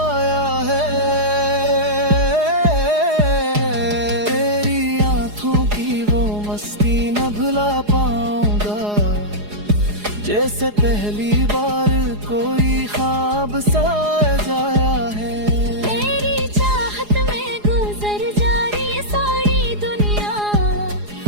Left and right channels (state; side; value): late; left; 4.8 ms